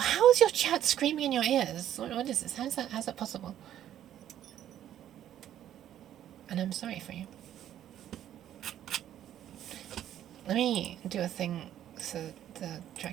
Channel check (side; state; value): left; quieter; 11.3 dB